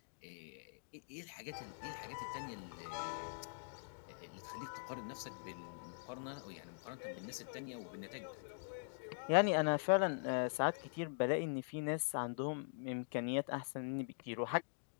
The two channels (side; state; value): right; silent; digital silence